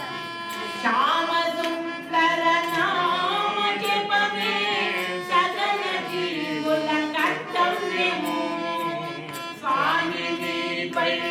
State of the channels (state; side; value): identical; both; correlation 1.00